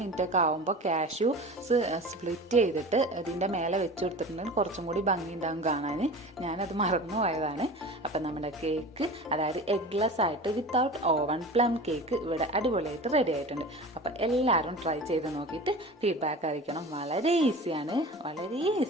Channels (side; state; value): both; normal; correlation 0.35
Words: ഒക്കെ ആകുമ്പോൾ കാഷ്യൂസ് സ്പ്ലിറ്റ് ചെയ്തിട്ട് ഇതിൻ്റെ മേലെ വെച്ച് കൊടുത്തിട്ടുണ്ടെങ്കിൽ കുറച്ചും കൂടി ഭംഗി ഉണ്ടാകും കാണാൻ. ഞാനത് മറന്നു പോയതാണ്. അപ്പം നമ്മുടെ കേക്ക്, അതായത് എഗ്ലെസ് ആയിട്ട് വിത്തൗട്ട് ഓവൻ പ്ലം കേക്ക് ഇവിടെ അടിപൊളിയായിട്ട് റെഡി ആയിട്ടുണ്ട്. അപ്പം എല്ലാവരും ട്രൈ ചെയ്ത് നോക്കിയിട്ട് ഫീഡ്ബാക്ക് അറിയിക്കണം. വളരെ ഈസിയാണ്